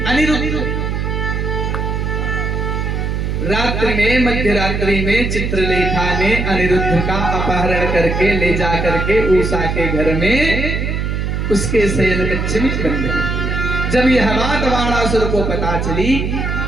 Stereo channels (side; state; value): right; noise; hum, 1 dB below the sound